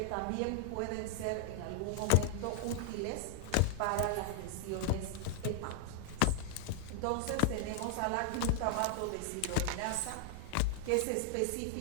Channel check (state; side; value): different; both; correlation 0.00